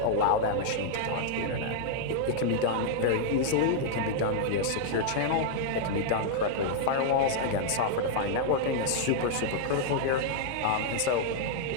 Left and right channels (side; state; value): both; different; correlation -0.01